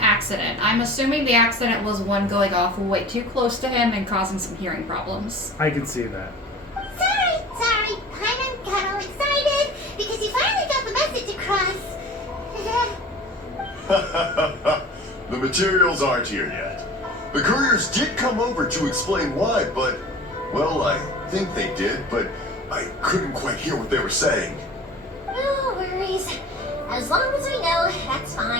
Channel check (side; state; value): both; normal; correlation 0.41